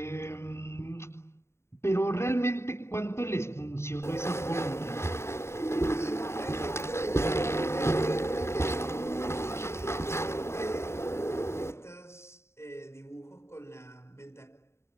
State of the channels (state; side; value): late; right; 0.13 ms